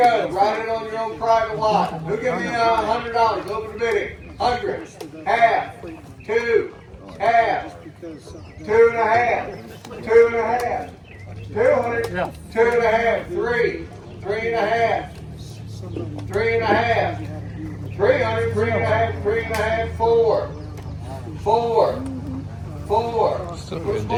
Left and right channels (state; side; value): identical; both; correlation 1.00